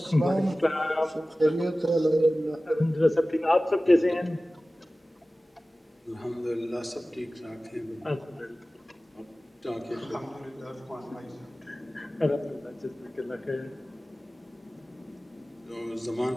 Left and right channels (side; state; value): both; normal; correlation 0.97